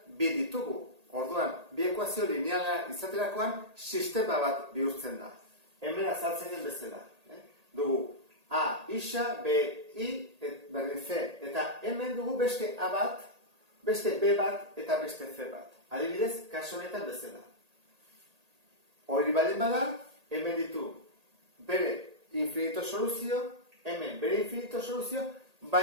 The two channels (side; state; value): left; late; 1.8 ms